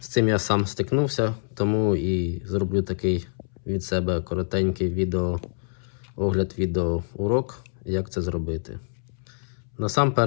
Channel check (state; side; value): silent; right; 61 dB below the other